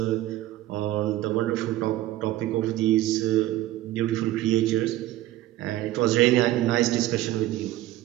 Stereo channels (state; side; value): quieter; left; 15.3 dB